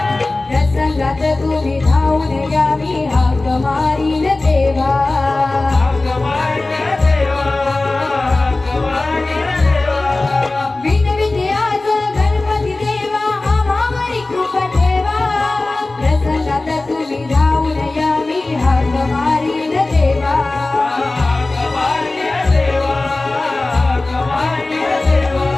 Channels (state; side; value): quieter; right; 3.1 dB